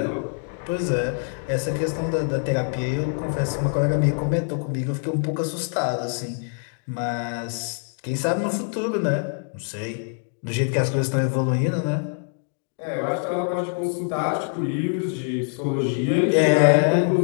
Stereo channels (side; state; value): right; silent; 55 dB below the other